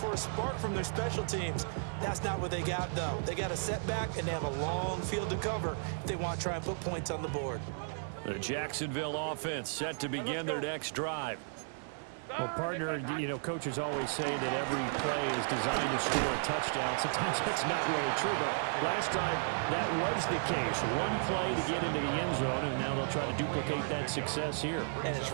a spark from their special teams. That's not what they got, though. They got a setback, and they have a long field to cover if they want to try and put points on the board. The Jacksonville offense set to begin their next drive. Well, partner, coaches always say that every play is designed to score a touchdown. Sometimes that's not really true, but last drive, that was the case. One play to get into the end zone, and now they'll try to duplicate that success here. And it's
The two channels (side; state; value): left; silent; digital silence